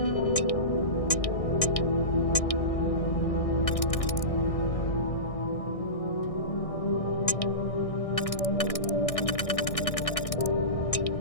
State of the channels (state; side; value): late; right; 1.6 ms